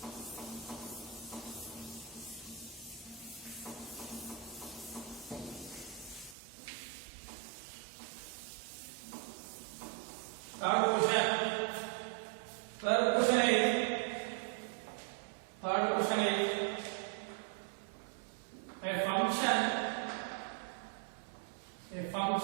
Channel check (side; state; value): left; drops out; at 6.4 s